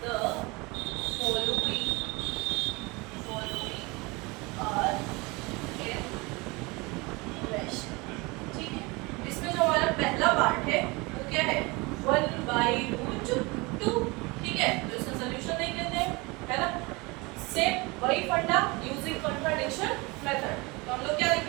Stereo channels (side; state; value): left; quieter; 25.6 dB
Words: the following are irrational. ठीक है, इसमें जो हमारा पहला पार्ट है वो क्या है 1/√2। ठीक है, तो इसका सॉल्यूशन देख लेते हैं, है ना। सेम वही फंडा यूजिंग कॉन्ट्राडिक्शन मेथड। तो हम लोग क्या